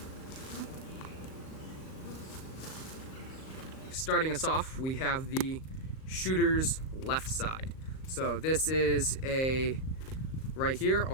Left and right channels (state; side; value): late; right; 38 ms